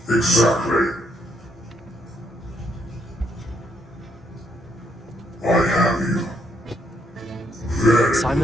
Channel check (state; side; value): normal; both; correlation 0.73